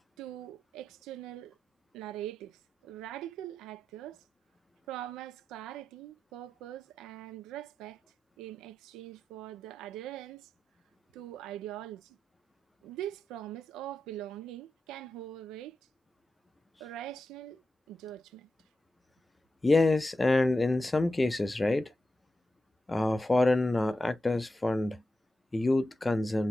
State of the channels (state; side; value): normal; both; correlation 0.91